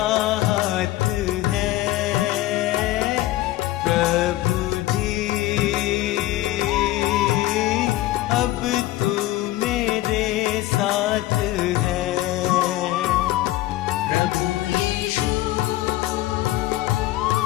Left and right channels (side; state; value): right; quieter; 16.3 dB